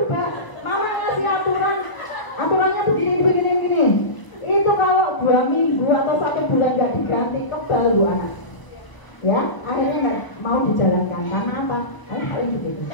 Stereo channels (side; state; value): right; late; 1.3 ms